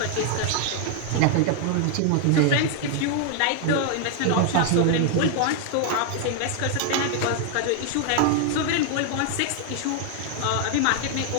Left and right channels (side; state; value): both; different; correlation 0.00